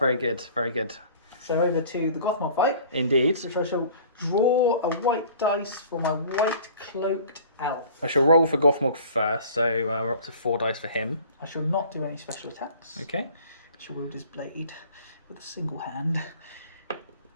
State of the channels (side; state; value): both; inverted; correlation -0.47